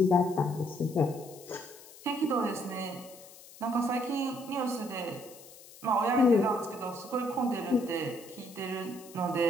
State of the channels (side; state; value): left; noise; hiss, 20 dB below the sound